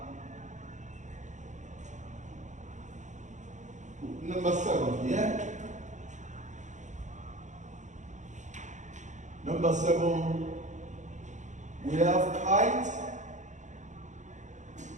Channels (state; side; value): late; left; 0.35 ms